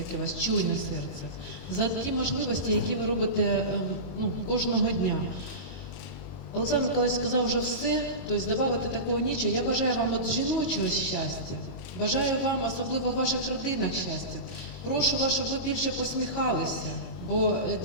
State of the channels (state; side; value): late; right; 22 ms